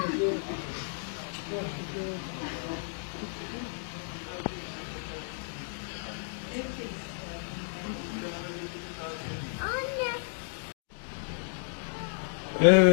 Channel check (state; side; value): silent; right; digital silence